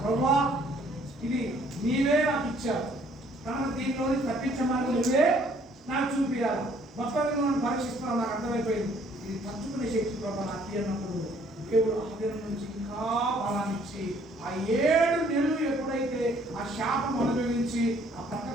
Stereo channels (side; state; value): both; normal; correlation 0.62